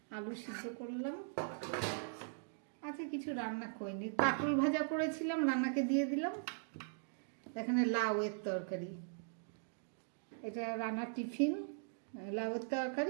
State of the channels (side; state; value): left; silent; digital silence